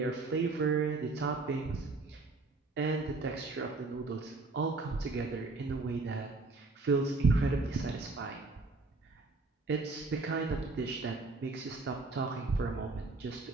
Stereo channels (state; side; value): quieter; left; 3.6 dB